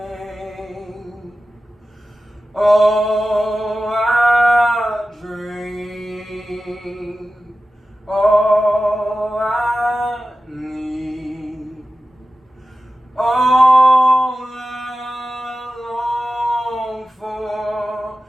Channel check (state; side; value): normal; both; correlation 0.94